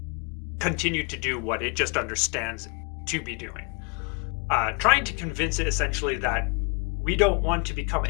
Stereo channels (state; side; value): quieter; right; 33.4 dB